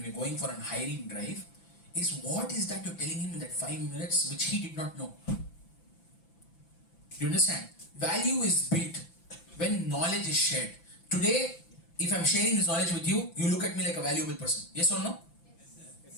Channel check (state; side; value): late; right; 5.9 ms